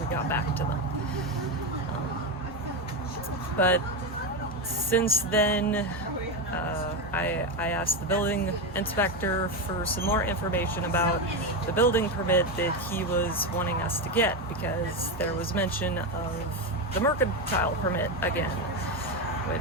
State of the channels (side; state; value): both; normal; correlation 0.12